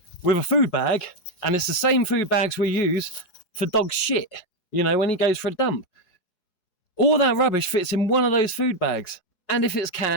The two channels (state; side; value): late; right; 4.7 ms